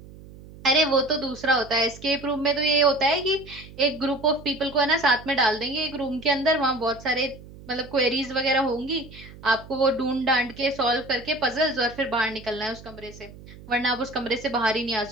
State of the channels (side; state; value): right; noise; hum, 18 dB below the sound